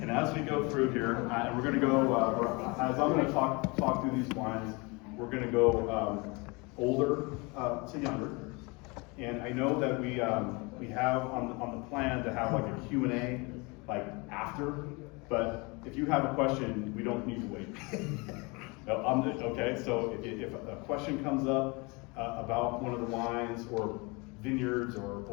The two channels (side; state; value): right; quieter; 27.8 dB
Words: And as we go through here, and we're going to go, as I'm going to talk through these wines, we're going to go older to younger. And I know that we have on the plan to have like a Q&A like after, but if you have a question, we don't need to wait. No, okay, so if a question comes up about one of the wines or vineyards or